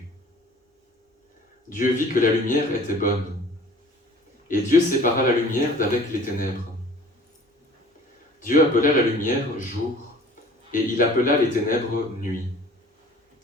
Dieu vit que la lumière était bonne, et Dieu sépara la lumière d'avec les ténèbres. Dieu appela la lumière jour, et il appela les ténèbres nuit.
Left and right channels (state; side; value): normal; both; correlation 0.48